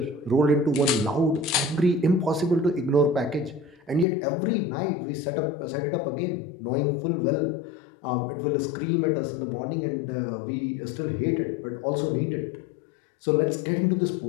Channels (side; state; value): right; drops out; at 4.0 s